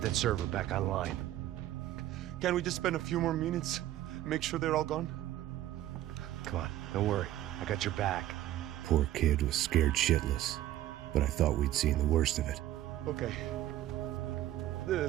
that server back online. Can't we just spend a few more minutes? Make sure they're all gone? Come on, don't worry. I got your back. Poor kid was scared shitless, but I thought we'd seen the worst of it. Okay.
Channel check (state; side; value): quieter; left; 13.8 dB